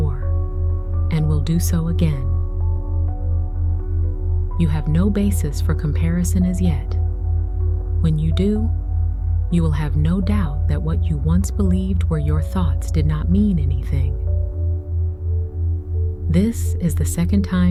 and will do so again. You have no basis for comparison as yet. When you do, you will have no doubt that what you once believed were your thoughts did not mean anything. This is the second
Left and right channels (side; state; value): both; identical; correlation 1.00